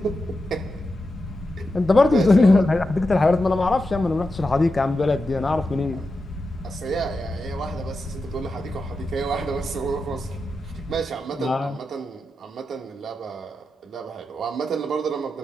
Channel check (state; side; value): normal; both; correlation 0.89